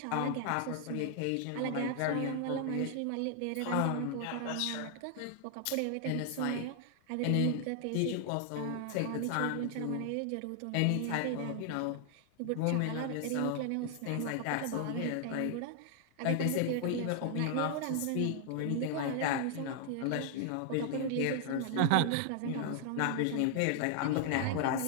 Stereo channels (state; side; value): different; both; correlation 0.00